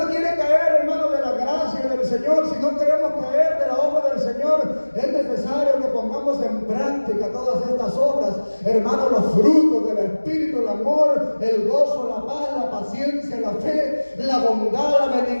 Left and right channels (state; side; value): inverted; both; correlation -1.00